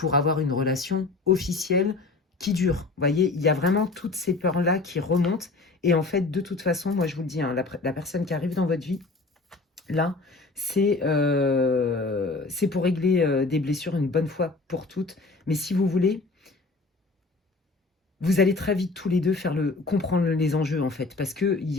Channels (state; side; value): quieter; right; 3.6 dB